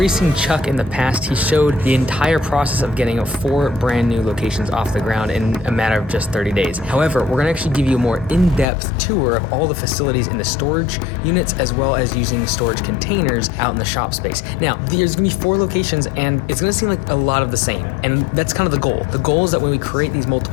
seen Chuck in the past. He showed the entire process of getting 4 brand new locations off the ground in a matter of just 30 days. However, we're gonna actually give you a more in-depth tour of all the facilities in the storage units, as well as using storage containers out in the shop space. Now, there's gonna be 4 locations, and it's gonna seem like a lot of the same. And that's kind of the goal. The goal is that when we create these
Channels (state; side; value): drops out; right; at 8.7 s